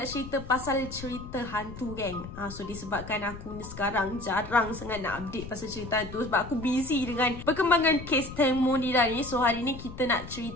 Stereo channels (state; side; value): noise; left; rumble, 12 dB below the sound